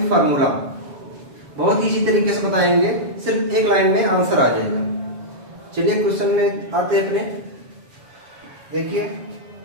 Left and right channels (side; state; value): left; late; 7.2 ms